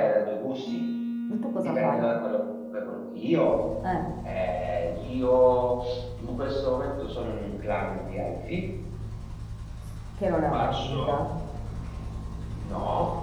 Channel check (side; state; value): both; identical; correlation 1.00